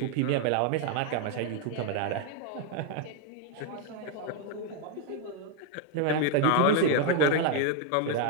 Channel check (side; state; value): both; different; correlation 0.00